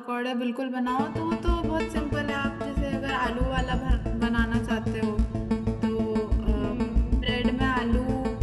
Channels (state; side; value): identical; both; correlation 1.00